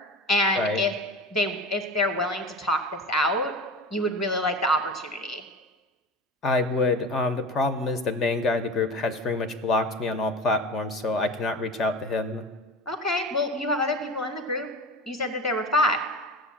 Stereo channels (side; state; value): both; normal; correlation 0.31